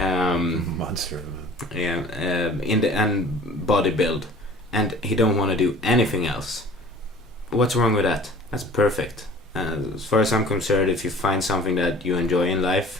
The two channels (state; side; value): normal; both; correlation 0.47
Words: And body build, and he don't want to do anything else. What's wrong with that? That's perfect. As far as I'm concerned, if you find something that you enjoy in life